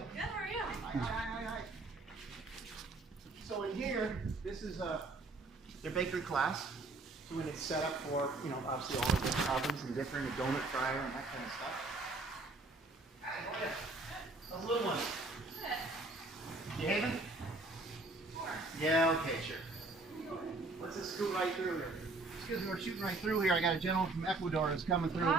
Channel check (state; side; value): quieter; left; 3.2 dB